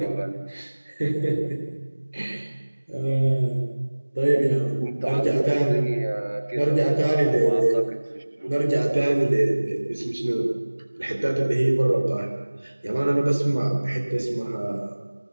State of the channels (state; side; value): inverted; both; correlation -1.00